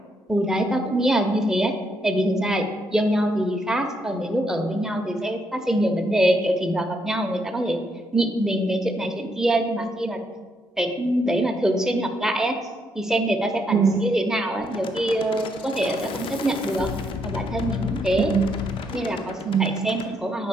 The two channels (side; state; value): both; normal; correlation 0.76